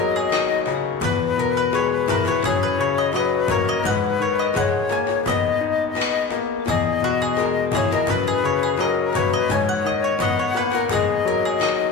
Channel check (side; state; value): right; quieter; 4.1 dB